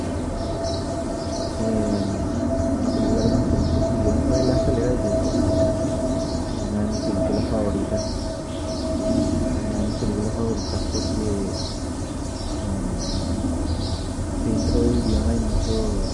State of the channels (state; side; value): identical; both; correlation 1.00